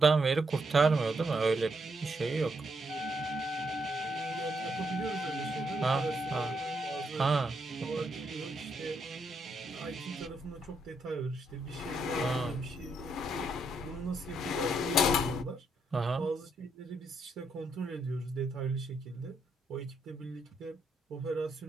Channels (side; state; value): both; normal; correlation 0.77